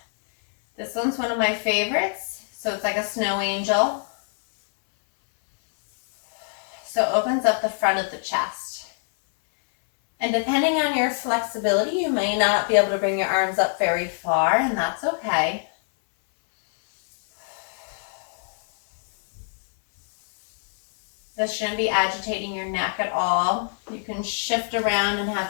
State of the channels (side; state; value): right; silent; 62 dB below the other